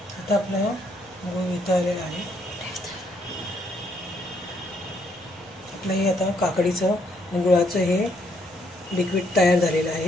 आता आपला गूळ वितळलेला आहे. हे आता काकडीचं आणि गुळाचं हे लिक्विड तयार झालेलं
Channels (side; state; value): both; normal; correlation 0.71